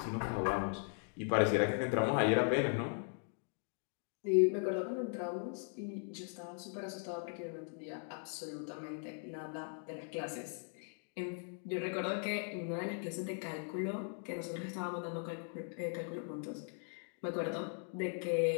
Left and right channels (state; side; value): silent; right; 52 dB below the other